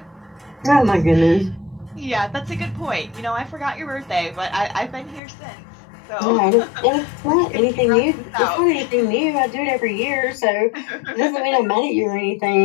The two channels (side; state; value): right; drops out; at 5.2 s